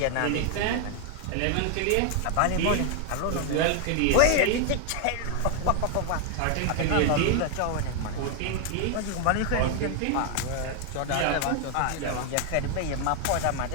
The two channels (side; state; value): both; different; correlation 0.00